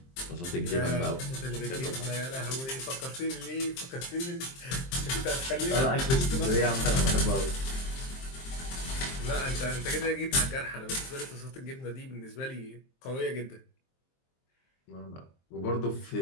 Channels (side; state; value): right; late; 23 ms